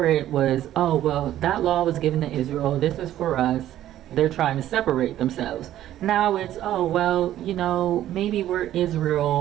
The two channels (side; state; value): left; quieter; 12.7 dB